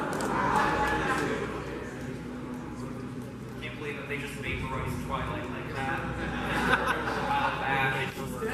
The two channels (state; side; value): identical; both; correlation 1.00